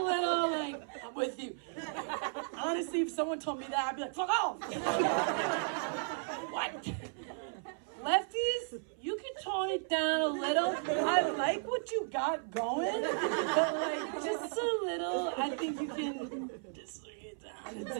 little, like, I'm with you. Honestly, if someone told me that, I'd be like, fuck off! What? Lefties, you can tone it down a little. I like what you got going, but like, just a little, I think you can just bring it down a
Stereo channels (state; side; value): silent; left; 55 dB below the other